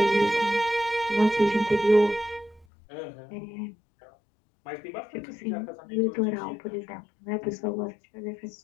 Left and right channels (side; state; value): right; drops out; at 2.7 s